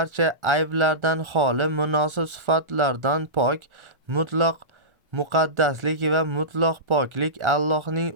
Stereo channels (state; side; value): late; left; 1.4 ms